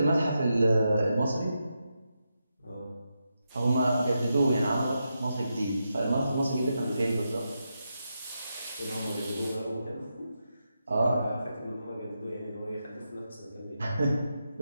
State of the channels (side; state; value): both; inverted; correlation -0.86